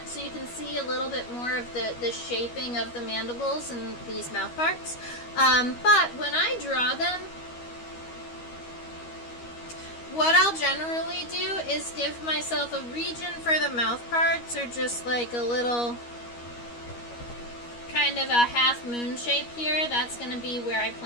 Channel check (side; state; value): right; late; 13 ms